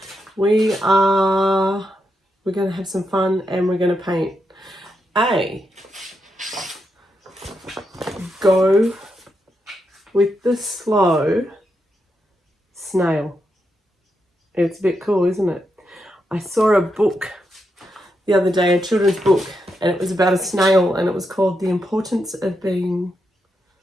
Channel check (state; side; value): normal; both; correlation 0.84